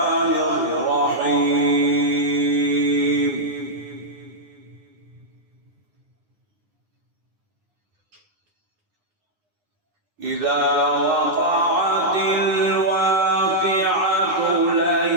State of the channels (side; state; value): left; late; 9.8 ms